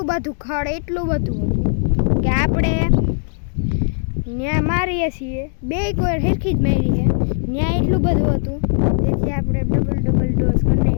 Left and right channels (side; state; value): right; silent; digital silence